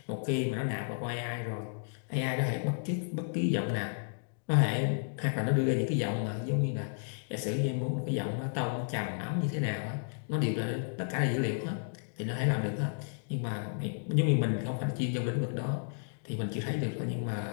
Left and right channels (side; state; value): right; silent; digital silence